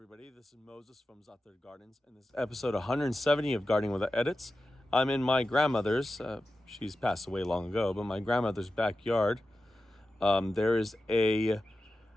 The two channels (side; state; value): both; normal; correlation 0.92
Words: everybody. This is Moses from Zother Gardens, and this is episode 170 of Gardening Without Edits. I'm in my grandmother's, she's passed away long ago, but my grandmother's backyard. There is a